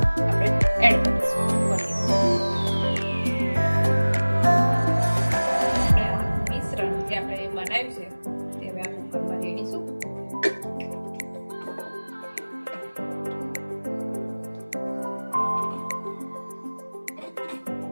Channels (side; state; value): both; inverted; correlation -1.00